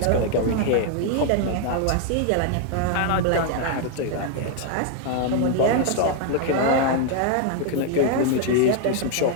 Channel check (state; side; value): different; both; correlation 0.00